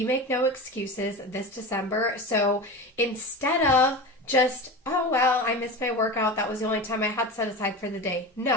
make no excuses this December. So instead of just, oh, well, I missed my workout, that was the only time I had set aside for the day.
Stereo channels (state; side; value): normal; both; correlation 0.28